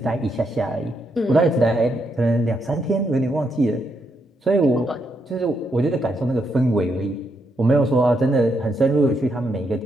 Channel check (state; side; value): normal; both; correlation 0.79